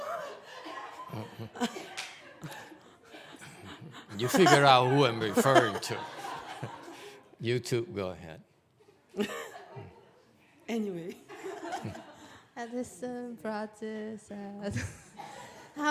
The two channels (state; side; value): identical; both; correlation 1.00